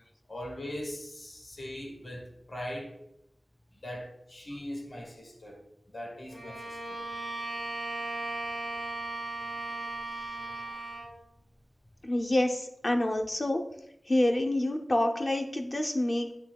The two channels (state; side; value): normal; both; correlation 0.96